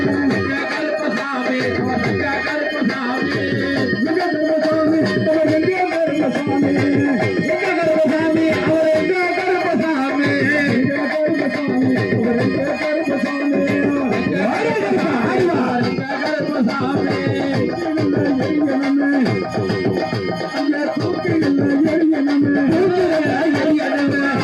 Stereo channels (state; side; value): identical; both; correlation 1.00